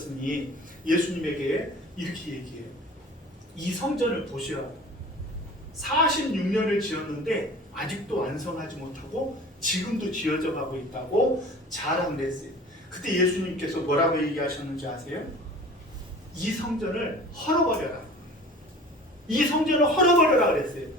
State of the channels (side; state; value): both; normal; correlation 0.42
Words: 예수님에게 이렇게 얘기해요. 이 성전을 보시라. 46년을 지었는데 아직도 완성하지 못하고 지금도 지어져 가고 있다고 자랑을 했어요. 그때 예수님께서 뭐라고 얘기하셨는지 아세요? 이 성전을 헐어버려라. 이 성전을 헐어버려라 그랬어요.